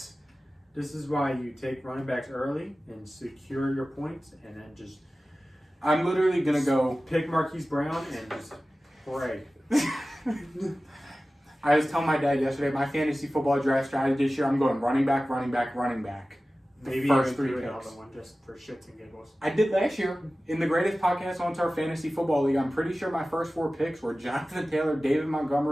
This is why you take running backs early and secure your points and then just I'm literally gonna go. Pick Marquise Brown and just pray. I was telling my dad yesterday, my fantasy football draft strategy this year, I'm going running back, running back, running back. Maybe first even 3 do another picks. one just for shits and giggles. I did last year in the greatest podcast on our fantasy football league. I'm pretty sure my first 4 picks were Jonathan Taylor, David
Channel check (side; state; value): both; normal; correlation 0.96